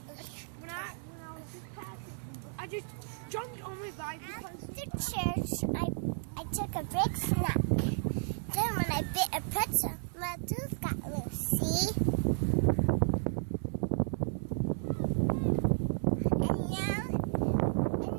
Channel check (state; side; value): silent; left; 56 dB below the other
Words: When I was just passing, I just jumped on my bike because After church, I took a big snack. Then when I bit a pretzel, my tooth got loose. See?